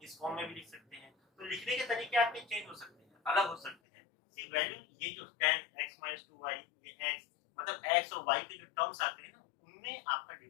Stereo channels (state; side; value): drops out; right; at 3.8 s